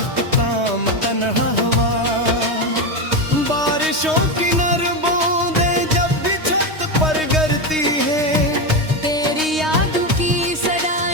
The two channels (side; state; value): left; late; 3.2 ms